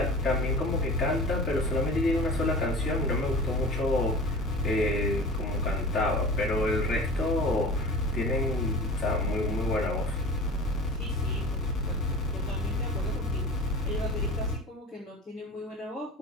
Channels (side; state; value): both; normal; correlation 0.37